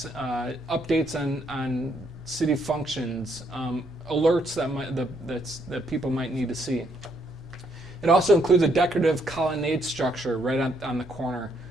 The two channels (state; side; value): normal; both; correlation 0.72